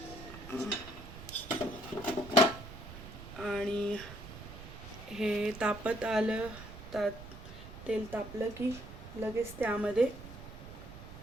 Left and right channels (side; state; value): right; noise; rumble, 13 dB below the sound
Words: आणि हे तापत आलं, तेल तापलं की लगेच त्यामध्ये